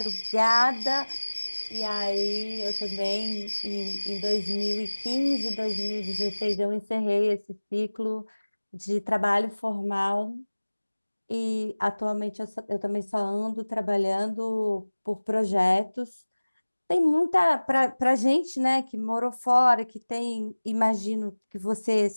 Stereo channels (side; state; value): both; inverted; correlation -1.00